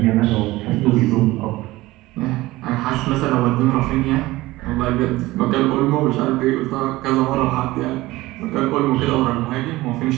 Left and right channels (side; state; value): left; quieter; 18.7 dB